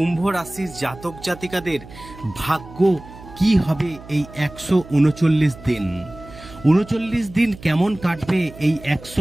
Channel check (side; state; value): right; noise; hum, 18 dB below the sound